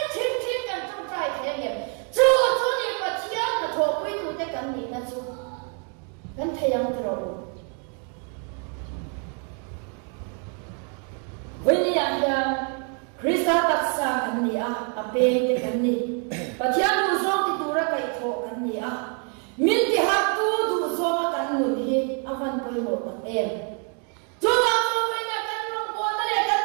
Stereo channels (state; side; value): quieter; left; 39.4 dB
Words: yang tro Veni ya Krista taksa kan ni ape te kan ni pathian du so ti tura kai tho kan ni min ti ha tu du so kan nu hi avan poi ho ta em tu ma tu mai na kan ro ko na le kan